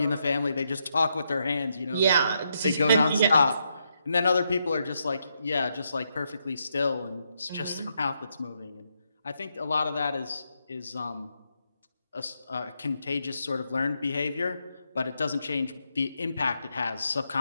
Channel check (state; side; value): inverted; both; correlation -0.80